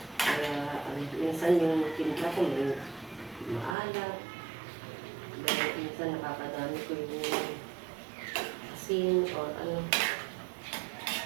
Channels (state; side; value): drops out; left; at 3.8 s